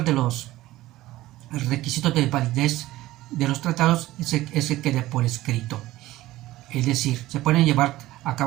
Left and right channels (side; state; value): left; quieter; 16.6 dB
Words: de los requisitos de validez de los tratados es que quede por escrito. Es decir, se pueden llevar a